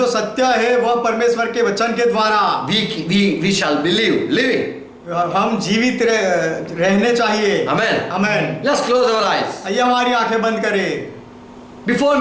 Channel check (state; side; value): identical; both; correlation 1.00